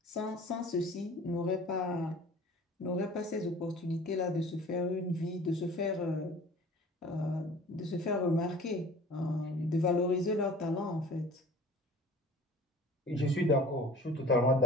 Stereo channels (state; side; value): normal; both; correlation 0.45